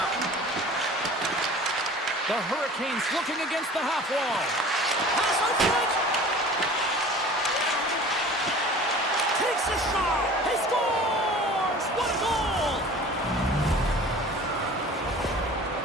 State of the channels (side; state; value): both; normal; correlation 0.43